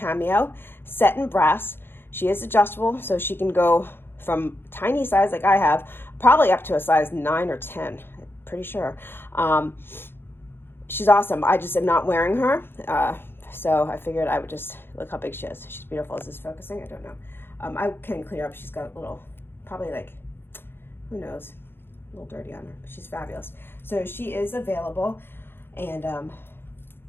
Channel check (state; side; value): late; right; 0.10 ms